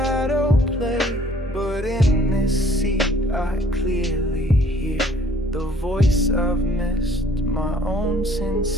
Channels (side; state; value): both; normal; correlation 0.57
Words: play. But in this seat I clearly hear the voice I've missed, my own